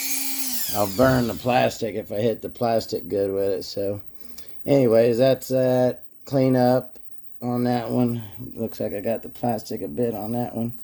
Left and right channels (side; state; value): both; identical; correlation 1.00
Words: I'll burn the plastic if I hit the plastic good with it. So anyways, that's that. Clean up on that one. Looks like I got the plastic a bit on that one.